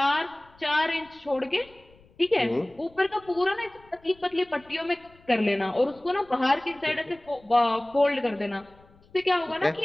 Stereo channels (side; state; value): left; noise; rumble, 28 dB below the sound